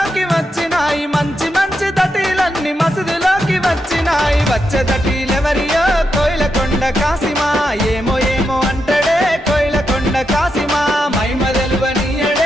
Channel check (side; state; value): both; normal; correlation 0.85